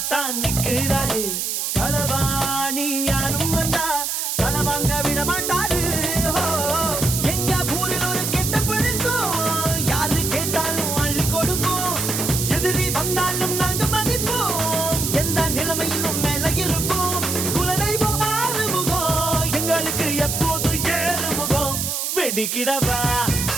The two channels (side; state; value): right; noise; hiss, 1 dB below the sound